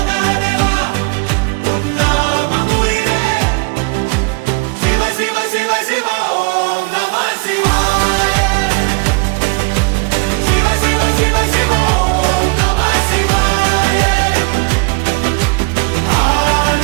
உன் நாமம் உயிரே சிவ சிவ சிவ சிவ ஓம் நம சிவாய சிவ சிவ சிவ சிவ ஓம் நம சிவாய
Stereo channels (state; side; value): quieter; left; 29.2 dB